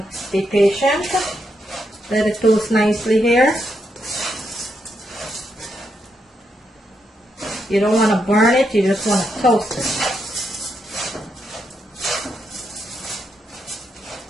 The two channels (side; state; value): both; normal; correlation 0.81